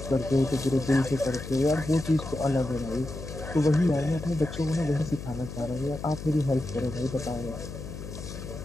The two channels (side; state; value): left; noise; hum, 10 dB below the sound